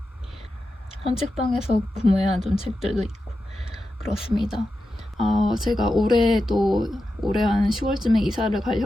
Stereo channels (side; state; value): both; normal; correlation 0.90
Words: 헌책방에서 구매한 좀 책들도 있고 그렇습니다. 제가 올해 한 10월쯤에 이사를 갈